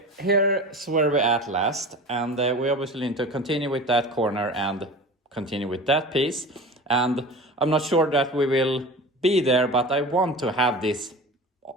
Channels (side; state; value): both; normal; correlation 0.34